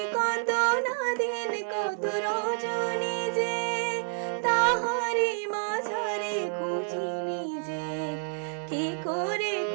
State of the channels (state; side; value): silent; left; digital silence